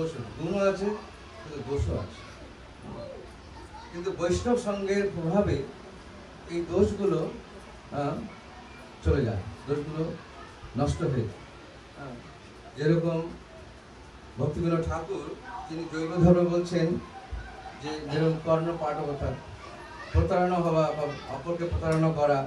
আছে, গুণও আছে কিন্তু দোষও আছে। কিন্তু বৈষ্ণব সঙ্গের প্রভাবে এই দোষগুলো চলে যায়, দোষগুলো নষ্ট হয়ে যায়। যেরকম ভক্তিবিনোদ ঠাকুর, তিনি জৈব ধর্ম বলছেন যে যেরকম কর্ণ পাঠকতা, প্রতারণা হওয়া বা অপরকে প্রতারণা করা,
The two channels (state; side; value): identical; both; correlation 1.00